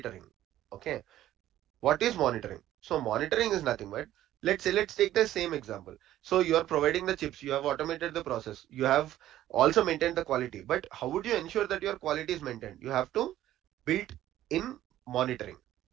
Okay. What is monitoring? So monitoring is nothing but, let's take the same example. So you are providing the chips, you have automated the process, you have also maintained the quality. But how would you ensure that your quality is maintained? You have to build in monitoring,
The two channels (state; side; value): quieter; left; 13.3 dB